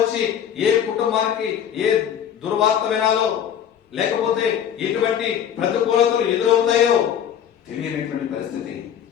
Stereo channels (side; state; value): right; quieter; 9.2 dB